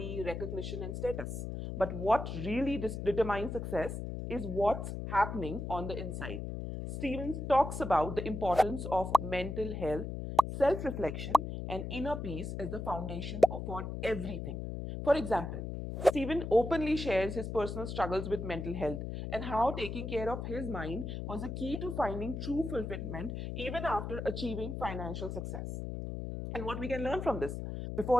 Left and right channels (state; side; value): noise; left; hum, 5 dB below the sound